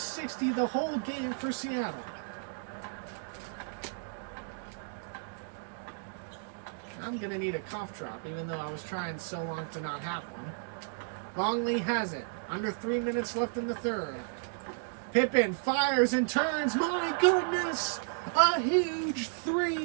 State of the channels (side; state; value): left; silent; digital silence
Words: the whole game for Seattle. I'm going to need a cough drop, even though I was trying so long to not have one. Longley has it. Under 3 minutes left in the third. Pippen fires and turns. My goodness! A huge